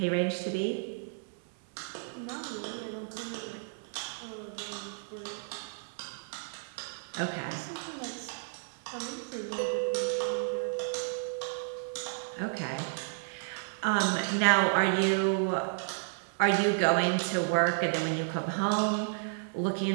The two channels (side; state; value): left; silent; 56 dB below the other